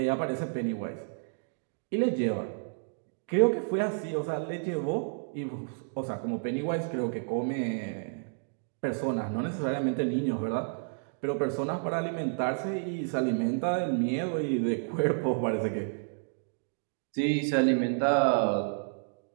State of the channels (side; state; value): left; silent; digital silence